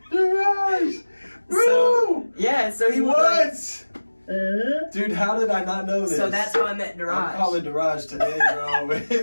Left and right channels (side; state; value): both; inverted; correlation -1.00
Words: Daraj! Bro! So he was What? Dude, how did I not know this? So that's how I met Daraj. I'm calling Daraj today,